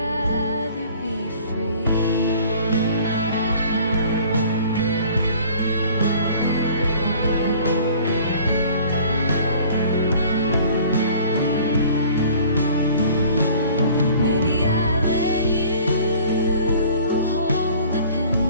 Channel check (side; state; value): both; inverted; correlation -0.50